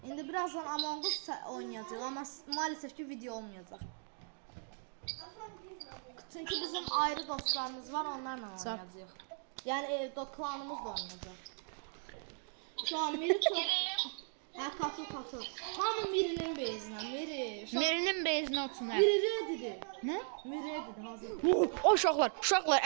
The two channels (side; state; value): left; silent; 53 dB below the other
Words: İndi birazdan Among Us oynayacağıq amma maalesef ki video olmayacaq. Çünki bizim ayrı dostlarımız var, onlarla oynayacağıq. Yəni klanımız da oynayacaq. Şu an Miri çox... Hə, katıl. Hamı Mirinin bezinə, Miri. Mirinin bezinə otursun. Miri redidir. Nə? Miri redidir, hazır. O uşaqlar